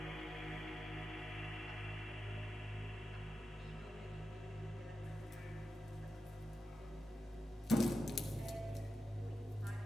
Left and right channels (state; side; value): normal; both; correlation 0.91